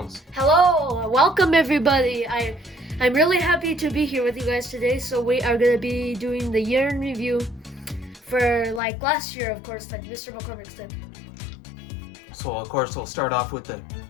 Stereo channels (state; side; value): drops out; right; at 8.8 s